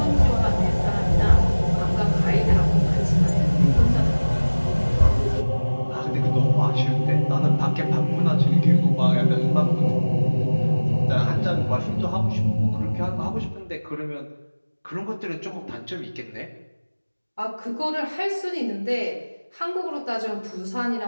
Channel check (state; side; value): inverted; both; correlation -1.00